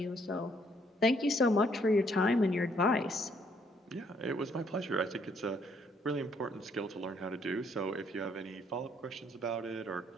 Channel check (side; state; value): both; normal; correlation 0.68